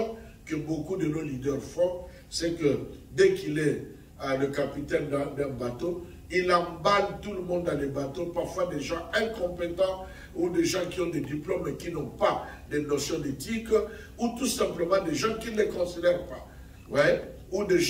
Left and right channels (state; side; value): identical; both; correlation 1.00